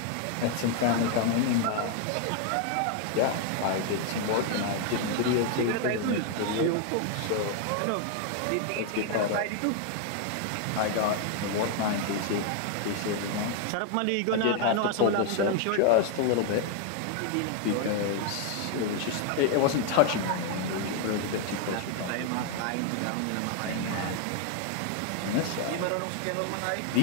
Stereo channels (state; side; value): different; both; correlation 0.00